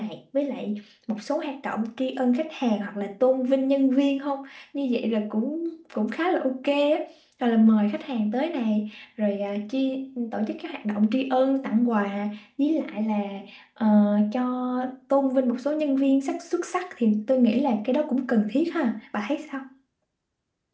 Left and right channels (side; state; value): both; identical; correlation 1.00